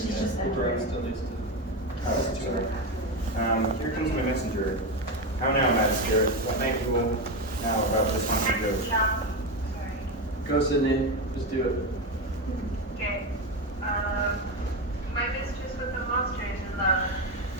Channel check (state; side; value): normal; both; correlation 0.14